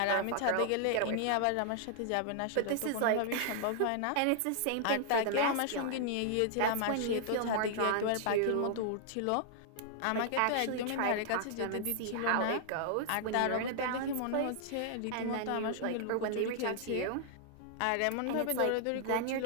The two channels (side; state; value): both; different; correlation -0.01